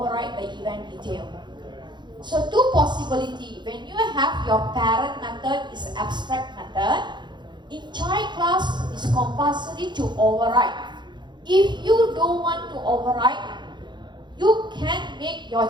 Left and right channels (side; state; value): left; late; 0.22 ms